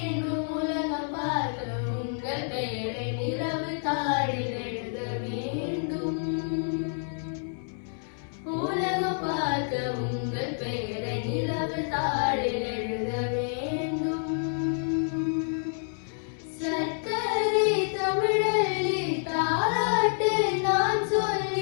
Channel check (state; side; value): silent; right; 59 dB below the other